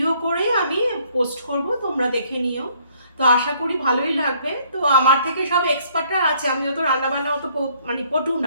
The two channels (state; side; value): inverted; both; correlation -0.64